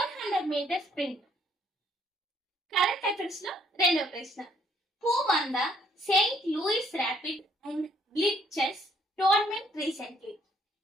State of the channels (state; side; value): normal; both; correlation 0.66